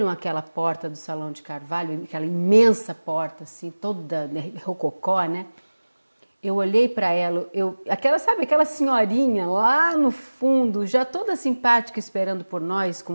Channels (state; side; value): inverted; both; correlation -1.00